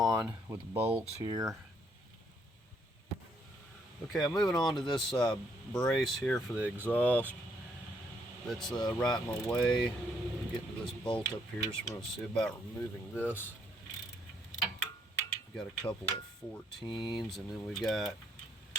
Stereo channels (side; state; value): both; normal; correlation 0.71